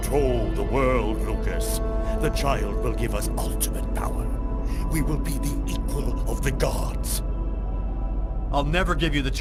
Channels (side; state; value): both; identical; correlation 1.00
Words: the world, Lucas. The child will give us ultimate power. We will be the equal of the gods. I'll never give you the